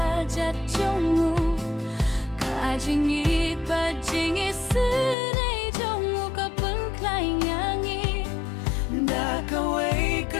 jatjongmu Kajing it bajing isunay jongmu kapeng klaing yangi Da kaway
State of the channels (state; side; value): drops out; right; at 5.2 s